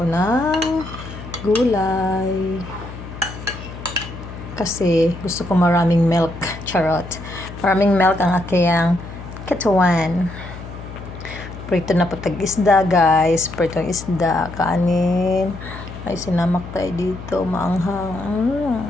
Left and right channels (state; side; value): noise; left; hum, 12 dB below the sound